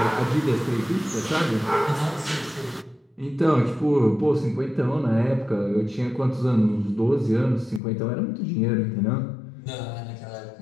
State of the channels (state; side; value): drops out; right; at 7.8 s